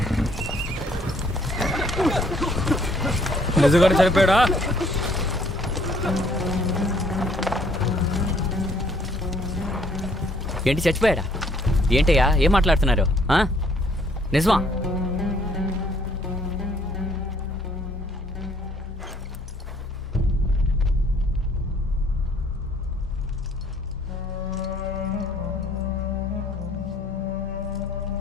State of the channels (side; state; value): both; normal; correlation 0.62